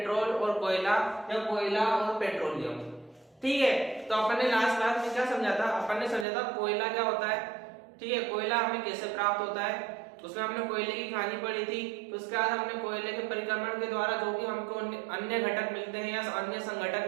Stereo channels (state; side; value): drops out; left; at 6.2 s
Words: और कोयला या कोयला और पेट्रोलियम। ठीक है, तो अपन ने लास्ट क्लास में क्या समझा था? अपन ने समझा था कोयला क्या होता है। ठीक है, कोयला हमें कैसे प्राप्त होता है, उसमें हमने कोयले की कहानी पढ़ी थी। तो उसके बाद हमने कोयले के परिक्रमण के द्वारा जो भी हमको अन्य घटक मिलते हैं या अन्य संघटक